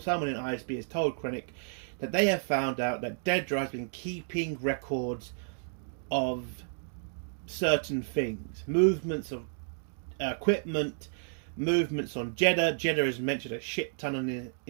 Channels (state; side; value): silent; left; digital silence